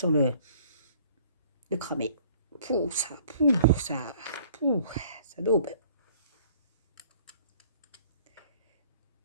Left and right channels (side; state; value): both; inverted; correlation -0.56